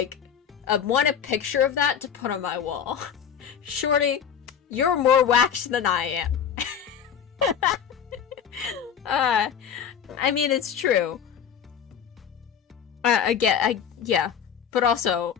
want a picture of that to put on my wall. Shorty, you're more waxed than I am. I mean, it's true. Yeah, but also,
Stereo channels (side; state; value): right; quieter; 7.9 dB